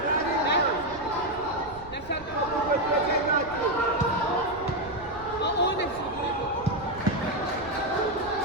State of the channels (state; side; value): noise; right; rumble, 19 dB below the sound